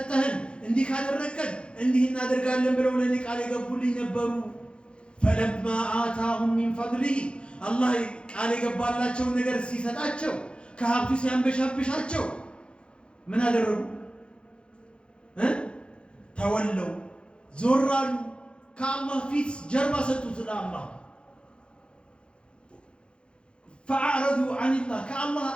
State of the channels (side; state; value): right; late; 0.056 ms